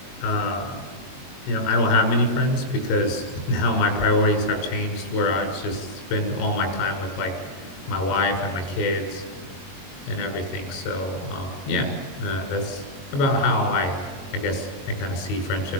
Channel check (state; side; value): late; right; 22 ms